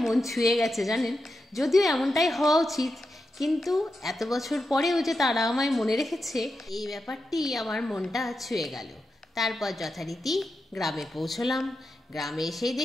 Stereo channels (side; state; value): both; normal; correlation 0.88